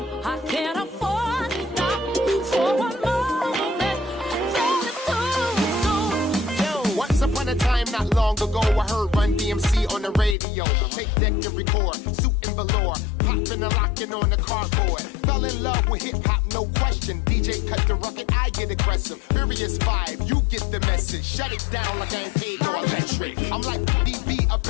I can't afford to stop for one moment. Then it's too soon. Yo, once upon a time, not long ago, I heard Run DMC on the radio. Take deck and record, suit and velour, popping and locking on the cardboard. Fell in love with hip hop, no question. DJ cut the record, I get aggressive. Furious 5, you get the message. Shut it down like I ain't paid no electric. I'm like BB up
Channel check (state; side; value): drops out; right; at 10.4 s